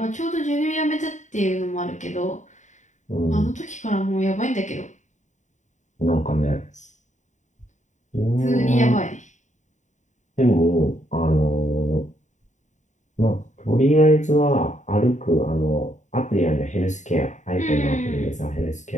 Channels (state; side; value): late; right; 0.35 ms